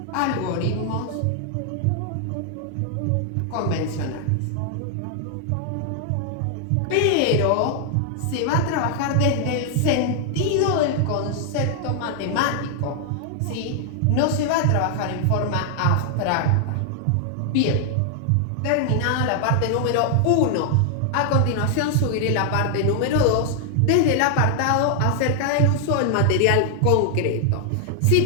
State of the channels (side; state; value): both; different; correlation 0.00